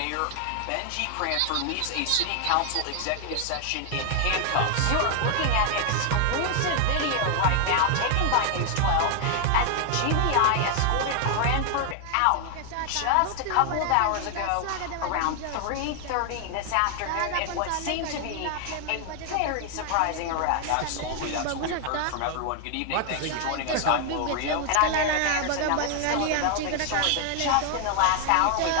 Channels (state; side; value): different; both; correlation 0.00